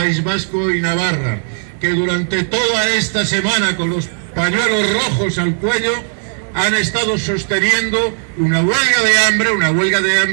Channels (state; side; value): silent; left; 66 dB below the other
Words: Vasco y Navarra, que durante toda esta semana, con los pañuelos rojos al cuello, han estado sosteniendo una huelga de